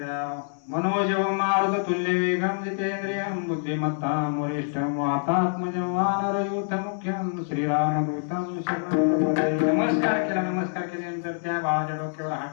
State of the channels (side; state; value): right; silent; digital silence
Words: मनोजवं मारुत तुल्य वेगम जितेंद्रियं बुद्धिमत्तां वरिष्ठं वातात्मजं वानरयूथ मुख्यं श्रीरामदूतं शरणं प्रपद्ये. नमस्कार केला. नमस्कार केल्यानंतर त्या बाळाच्या डोक्यावर